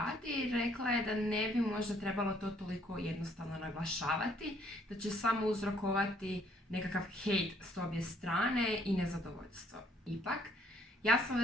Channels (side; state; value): both; normal; correlation 0.65